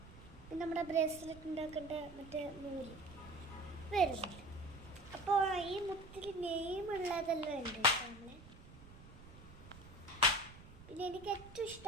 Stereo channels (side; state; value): right; noise; rumble, 18 dB below the sound